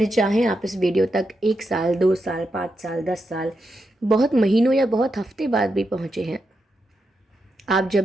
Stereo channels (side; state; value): both; normal; correlation 0.85